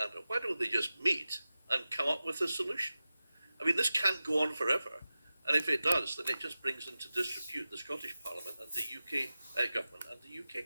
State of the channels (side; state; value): both; inverted; correlation -0.95